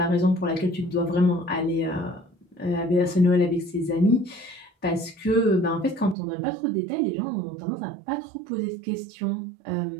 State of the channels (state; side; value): drops out; left; at 6.2 s